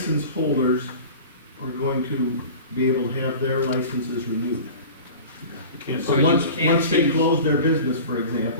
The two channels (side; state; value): both; inverted; correlation -0.38